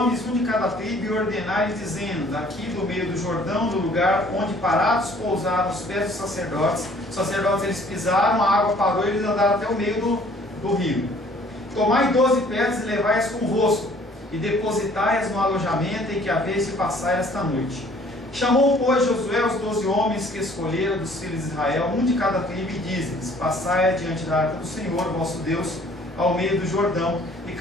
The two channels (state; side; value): normal; both; correlation 0.56